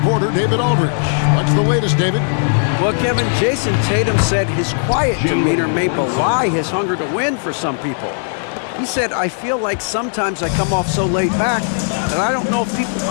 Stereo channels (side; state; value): right; silent; digital silence